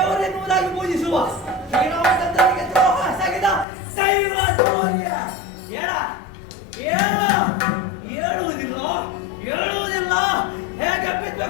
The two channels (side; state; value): right; drops out; at 3.7 s